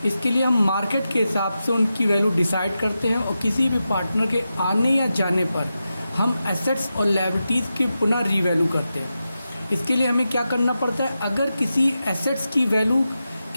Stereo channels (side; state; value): both; inverted; correlation -0.90